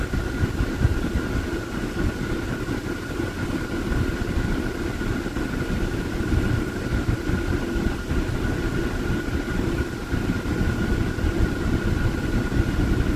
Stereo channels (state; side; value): identical; both; correlation 1.00